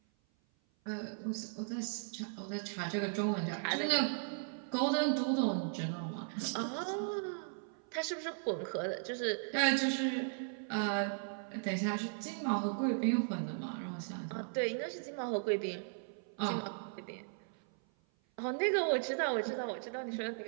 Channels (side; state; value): left; silent; 53 dB below the other